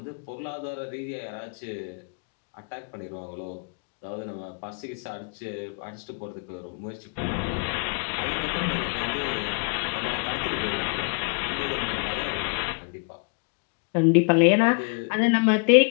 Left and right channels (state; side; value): quieter; right; 38.1 dB